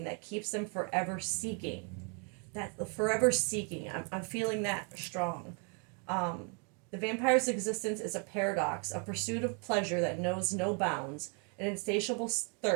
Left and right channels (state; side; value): quieter; left; 37.3 dB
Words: that keeps them forever seeking. That forever seeking, I'm feeling that strong. The vampire's existence is a paradox, a pursuit of pleasure that knows no bounds, an insatiable